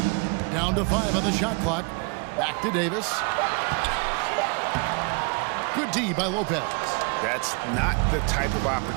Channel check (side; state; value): left; quieter; 33.4 dB